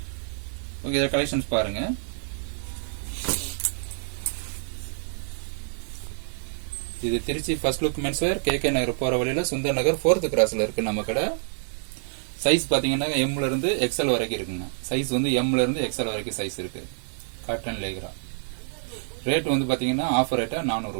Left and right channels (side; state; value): left; silent; digital silence